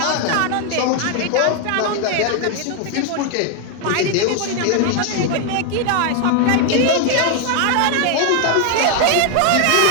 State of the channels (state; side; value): different; both; correlation 0.00